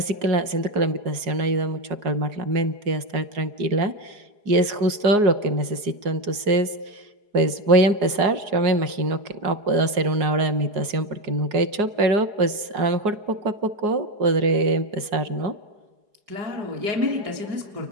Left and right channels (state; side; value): late; left; 4.8 ms